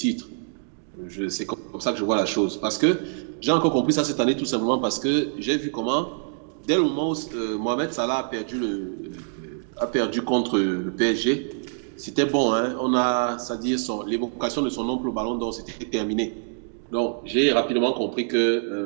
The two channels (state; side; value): silent; left; digital silence